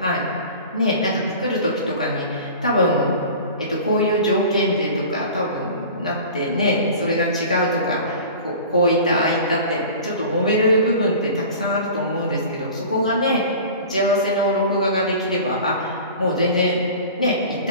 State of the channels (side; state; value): both; inverted; correlation -0.39